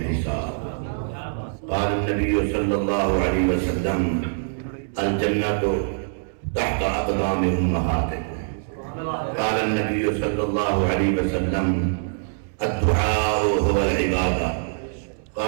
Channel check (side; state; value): left; silent; 63 dB below the other